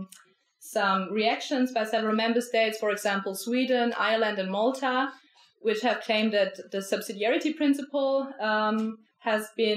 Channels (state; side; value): identical; both; correlation 1.00